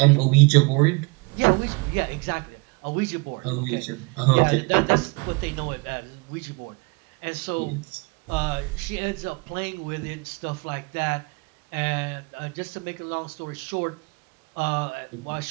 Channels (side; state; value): left; quieter; 29.3 dB